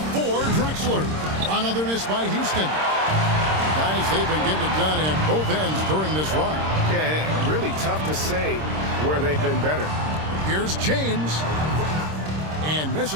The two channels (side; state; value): left; late; 26 ms